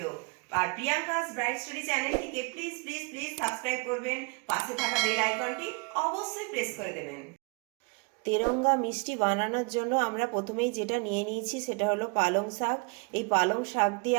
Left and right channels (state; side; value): quieter; left; 31.9 dB